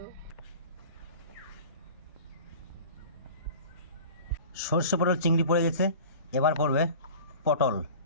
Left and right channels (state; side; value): inverted; both; correlation -0.40